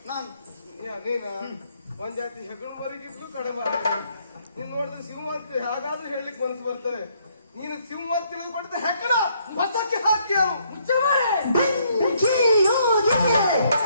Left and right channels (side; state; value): both; inverted; correlation -0.69